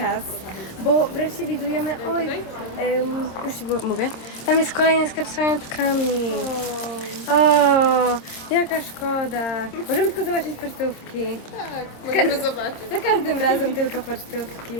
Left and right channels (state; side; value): late; right; 26 ms